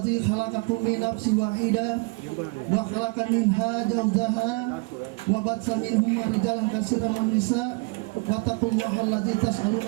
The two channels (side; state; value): left; quieter; 29.4 dB